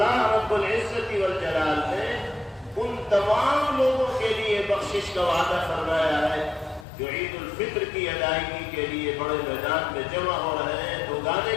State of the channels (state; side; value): drops out; right; at 6.9 s